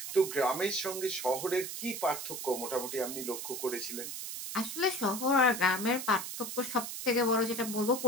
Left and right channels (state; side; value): noise; right; hiss, 6 dB below the sound